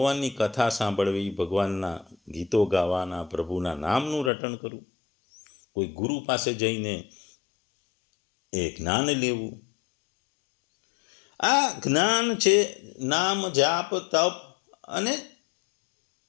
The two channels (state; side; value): drops out; right; at 4.3 s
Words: કથા સાંભળવી, ભગવાનના ગીતો ગાવાના, પ્રભુના નામનું રટણ કરવું, કોઈ ગુરુ પાસે જઈને એ જ્ઞાન લેવું. આ જ્ઞાન છે નામ, જાપ, તપ અને